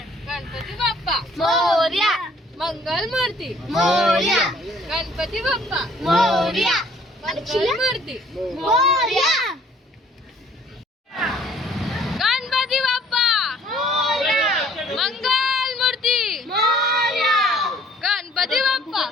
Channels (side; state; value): both; normal; correlation 0.58